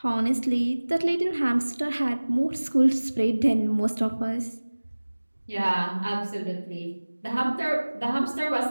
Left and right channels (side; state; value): both; inverted; correlation -1.00